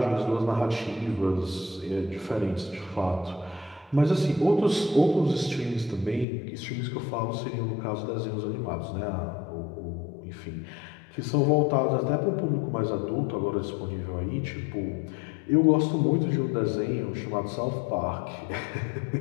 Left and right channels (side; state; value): right; drops out; at 6.2 s